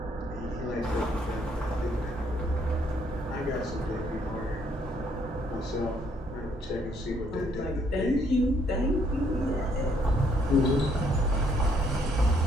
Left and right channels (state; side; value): normal; both; correlation 0.68